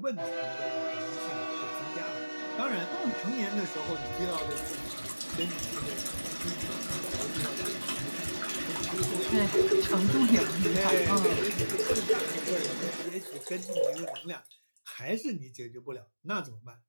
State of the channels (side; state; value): both; inverted; correlation -1.00